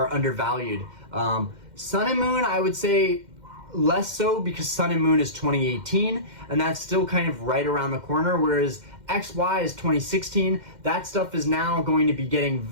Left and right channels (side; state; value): left; late; 2.1 ms